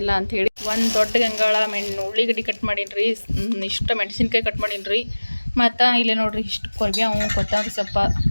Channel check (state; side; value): inverted; both; correlation -1.00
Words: ಅಂಥೇಳಿ. ಒಂದು ದೊಡ್ಡ ಗಂಗಾಳ ಉಳ್ಳಿಗಡ್ಡಿ ಕಟ್ ಮಾಡೀನಿ ರೀ. ಇಷ್ಟು ಮೆಣಸಿನ್ಕಾಯಿ ಕಟ್ ಮಾಡೀನಿ ರೀ. ಮತ್ತು ಇಲ್ಲಿ ನೋಡ್ರಿ ಇಷ್ಟು ಕೊರಿಬೇವು, ಕೊತ್ತಂಬರಿ ಸೊಪ್ಪ,